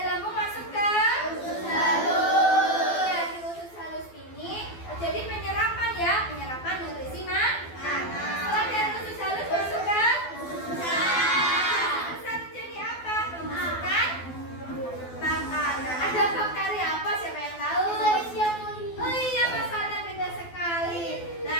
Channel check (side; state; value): right; late; 12 ms